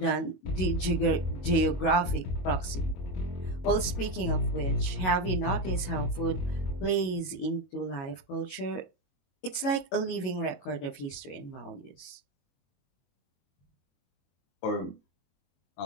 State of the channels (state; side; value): late; right; 22 ms